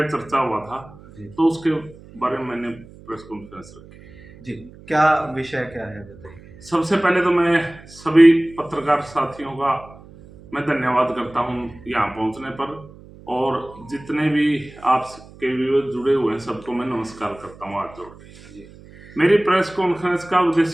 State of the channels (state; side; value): noise; right; hum, 21 dB below the sound